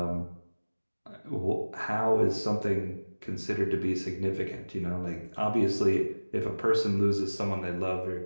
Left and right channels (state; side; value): inverted; both; correlation -1.00